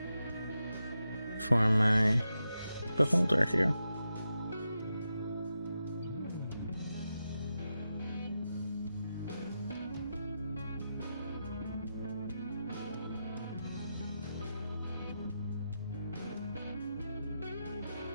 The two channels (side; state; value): both; inverted; correlation -0.88